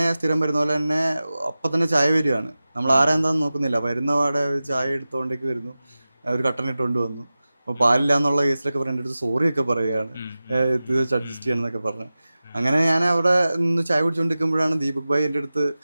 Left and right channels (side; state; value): both; inverted; correlation -0.95